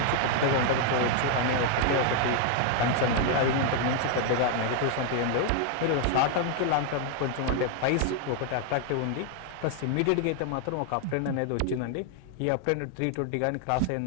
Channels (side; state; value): both; different; correlation 0.00